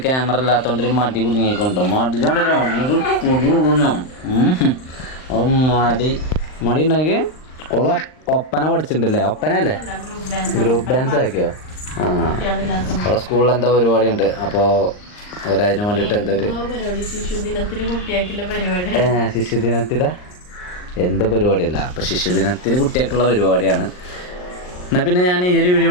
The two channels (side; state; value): right; late; 39 ms